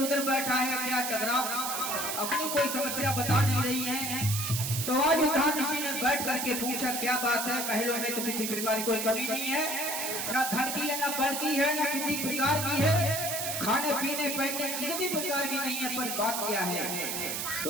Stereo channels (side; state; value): right; noise; hiss, 2 dB below the sound